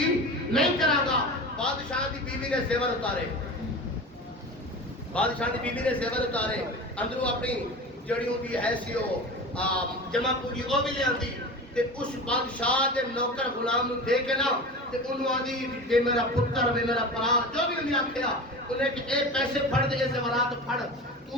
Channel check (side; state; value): both; normal; correlation 0.31